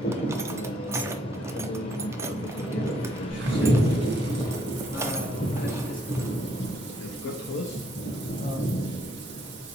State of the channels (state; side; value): normal; both; correlation 0.71